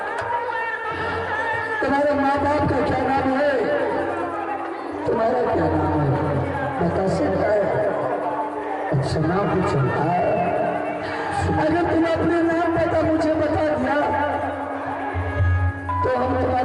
तुम्हारे माँ बाप का क्या नाम है, तुम्हारा क्या नाम है बता सकता है? अच्छा नाम पूछो। अगर तुम अपने नाम पता मुझे बता दिया तो हम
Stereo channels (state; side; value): identical; both; correlation 1.00